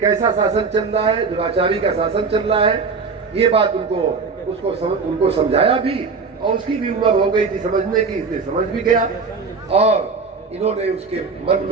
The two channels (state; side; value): quieter; left; 4.8 dB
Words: शासन चल रहा है, दुराचारी का शासन चल रहा है। ये बात उनको समझाया भी, और उसकी भी उम्र हो गई थी समझने की, इसलिए समझ भी गया। और इन्होंने उसके मन